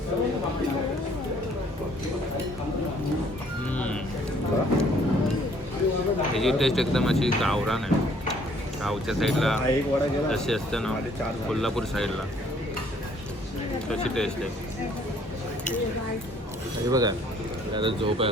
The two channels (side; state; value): both; normal; correlation 0.61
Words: ह्याची टेस्ट एकदम अशी गावरान आहे. गावच्या साईडला हा एक वडा गेला जशी असते ना कोल्हापूर साईडला तशी टेस्ट आहे. हे बघा आता झोप